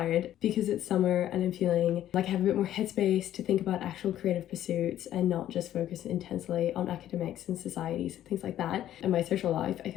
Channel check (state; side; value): quieter; right; 12.1 dB